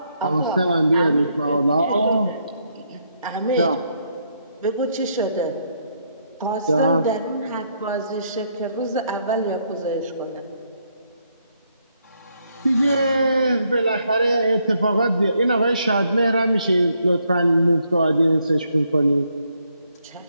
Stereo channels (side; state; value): both; inverted; correlation -0.75